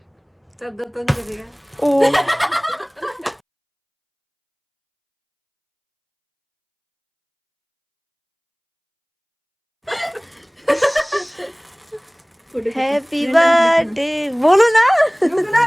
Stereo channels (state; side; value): identical; both; correlation 1.00